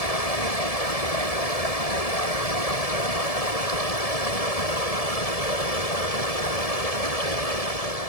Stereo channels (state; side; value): late; right; 1.7 ms